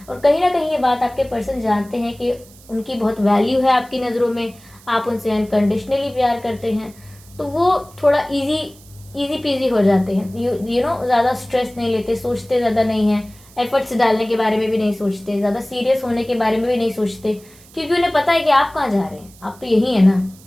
और कहीं ना कहीं ये बात आपके पर्सन जानते हैं कि उनकी बहुत वैल्यू है आपकी नज़रों में, आप उनसे अनकंडीशनली प्यार करते हैं। तो वो थोड़ा इजी पीजी हो जाते हैं, ज़्यादा स्ट्रेस नहीं लेते, सोचते ज़्यादा नहीं हैं, एफर्ट्स डालने के बारे में भी नहीं सोचते, ज़्यादा सीरियस होने के बारे में भी नहीं सोचते, क्योंकि उन्हें पता है कि आप कहाँ जा रहे हैं। आप तो यही है ना।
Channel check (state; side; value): noise; right; hiss, 24 dB below the sound